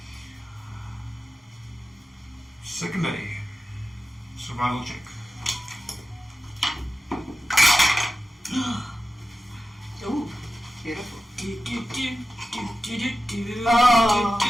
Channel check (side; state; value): both; normal; correlation 0.93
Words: Second day, survival check. Ooh, beautiful.